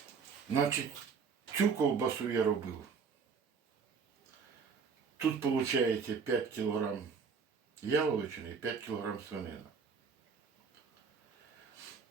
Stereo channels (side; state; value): left; quieter; 5.7 dB